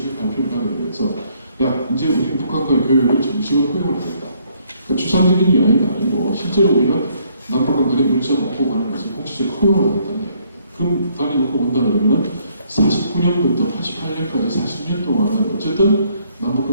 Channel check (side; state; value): both; inverted; correlation -0.67